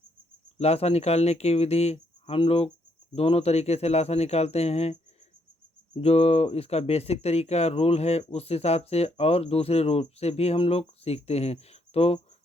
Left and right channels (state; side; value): normal; both; correlation 0.73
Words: लासा निकालने की विधि हम लोग दोनों तरीके से लासा निकालते हैं। जो इसका बेसिक तरीका रूल है उस हिसाब से और दूसरे रूल से भी हम लोग सीखते हैं। तो